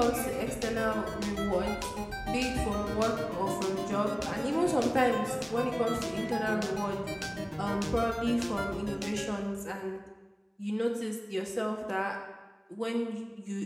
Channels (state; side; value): identical; both; correlation 1.00